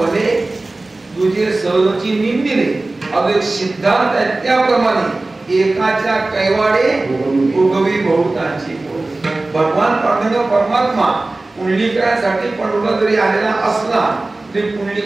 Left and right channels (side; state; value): left; quieter; 3.0 dB